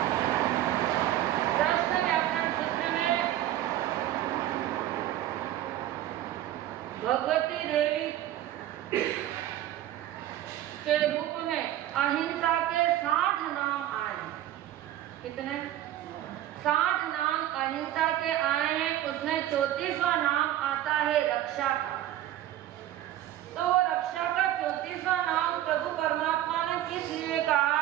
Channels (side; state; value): left; quieter; 13.1 dB